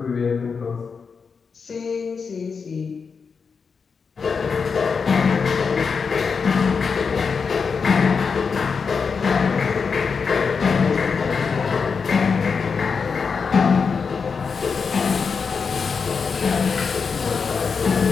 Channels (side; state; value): right; quieter; 5.5 dB